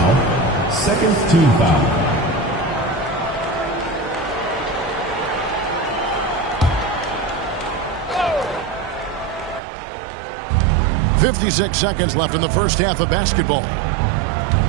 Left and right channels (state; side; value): drops out; left; at 9.6 s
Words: Second team foul. .56 seconds left in the first half of basketball.